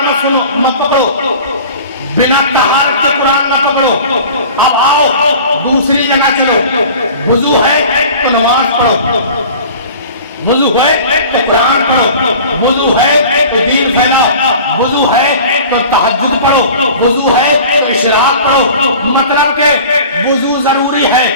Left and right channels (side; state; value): both; inverted; correlation -0.41